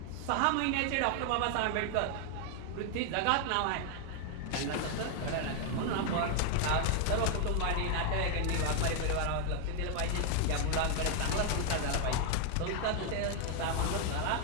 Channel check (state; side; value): different; both; correlation 0.00